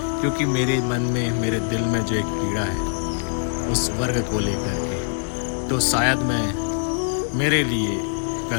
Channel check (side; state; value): right; silent; digital silence